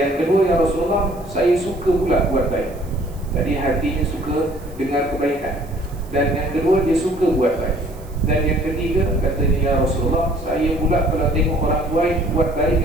kedua, ya Rasulullah, saya suka pula buat baik. Jadi hatinya suka dengar kebaikan. Dan yang kedua, dia suka buat baik. Dan yang ketiga, katanya, ya Rasulullah, saya pula kalau tengok orang buat baik,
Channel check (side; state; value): right; noise; hiss, 25 dB below the sound